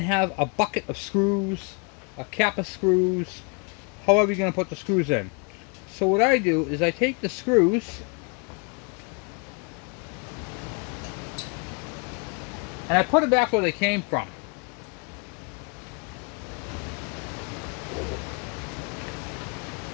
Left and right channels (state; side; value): quieter; right; 33.5 dB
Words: have a bucket of screws, a cap of screws, however you're going to put the screws in. So what I do is I take the screws and I put them back where they came from.